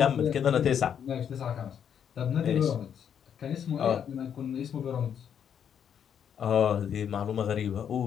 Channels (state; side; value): quieter; right; 8.4 dB